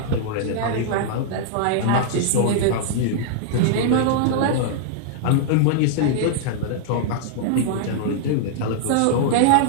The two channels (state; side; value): different; both; correlation -0.01